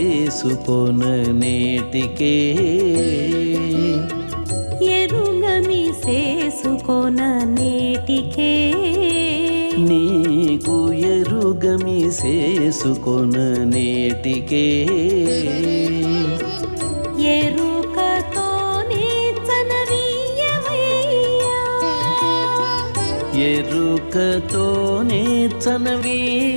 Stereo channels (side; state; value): both; inverted; correlation -1.00